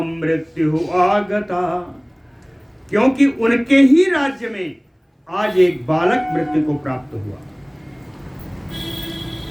मृत्यु आगता, क्योंकि उनके ही राज्य में आज एक बालक मृत्यु को प्राप्त हुआ।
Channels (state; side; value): identical; both; correlation 1.00